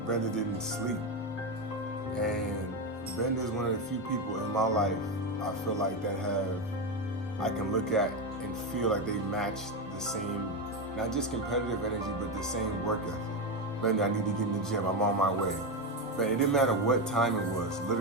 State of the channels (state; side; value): normal; both; correlation 0.12